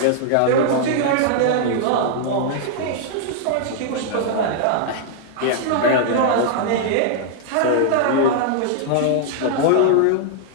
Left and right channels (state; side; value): different; both; correlation -0.01